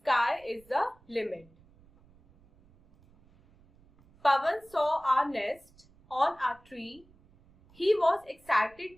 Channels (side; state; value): right; noise; rumble, 29 dB below the sound